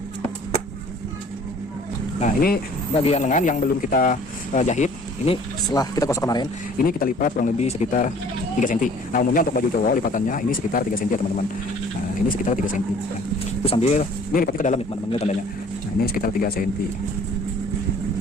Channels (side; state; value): both; normal; correlation 0.52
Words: Nah ini bagian lengan yang belum kita jahit. Ini setelah kita gosok kemarin, ini kita lipat kurang lebih sekitar 3 cm. Nah umumnya untuk baju cowok lipatannya ini sekitar 3 cm ya teman-teman. Nah ini sekitar 3 cm. Nah, itu sambil ini lipatnya ke dalam ya teman-teman, lihat tandanya. Nah ini sekitar 3 cm.